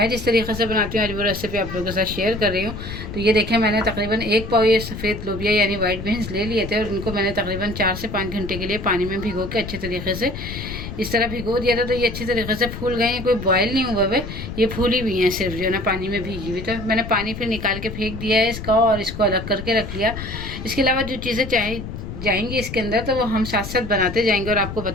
जिस तरीके से बनाती हूँ आज वो रेसिपी आप लोगों के साथ शेयर कर रही हूँ। तो ये देखें, मैंने तकरीबन 1 पाव ये सफ़ेद लोबिया यानी वाइट बीन्स ले लिए थे और उनको मैंने तकरीबन 4 से 5 घंटे के लिए पानी में भिगो के अच्छे तरीके से इस तरह भिगो दिया था। तो ये अच्छी तरीके से फूल गए हैं, कोई बॉयल नहीं हुआ है, ये फूली हुई हैं सिर्फ जो है ना पानी में भीगी हुई। तो मैंने पानी फिर निकाल के फेंक दिया है इसका और इसको अलग करके रख लिया। इसके अलावा जो चीज़ें जाएंगी इसके अंदर तो वो हम साथ साथ बनाते जाएंगे और आपको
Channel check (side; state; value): left; noise; rumble, 8 dB below the sound